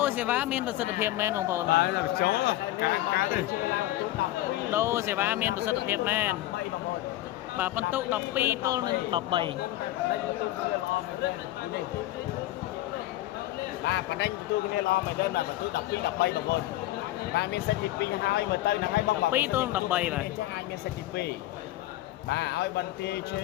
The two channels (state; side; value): quieter; right; 15.8 dB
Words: រសេវាមានប្រសិទ្ធភាពមែនបងប្អូន ហើ បាទ យតែចូលការទេ ដូរសេវាមានប្រសិទ្ធភាពមែនបាទបន្ទុក12ទល់នឹង13 បាទបណ្ដេញទូគ្នាល្អមែនទេបាទបន្ទូ12 13បងប្អូនបាទមានសិទ្ធិទី2ហើយមើលទៅហ្នឹងហើយបង 12ទល់នឹង13បាទ អាចមានសិទ្ធិទី2បាទឲ្យបន្ទាយឈ